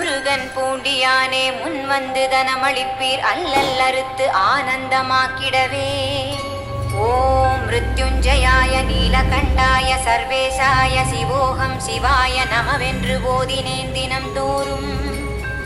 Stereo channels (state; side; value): identical; both; correlation 1.00